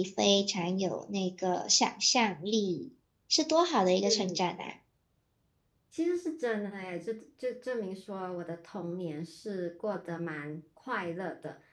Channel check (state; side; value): identical; both; correlation 1.00